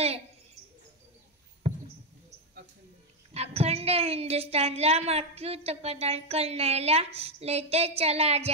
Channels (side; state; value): both; normal; correlation 0.05